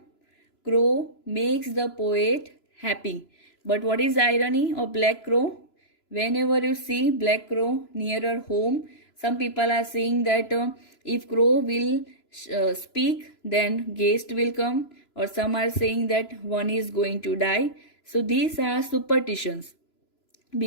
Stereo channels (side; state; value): right; late; 3.0 ms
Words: crow makes the poet happy. But what is the irony of black crow? Whenever you see black crow nearer home, some people are saying that if crow will speak, then guest will come, or some are saying that one is going to die. So these are superstitions,